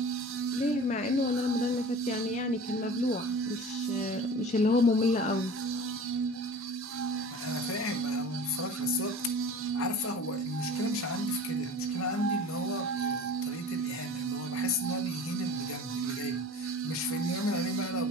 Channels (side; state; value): both; normal; correlation 0.39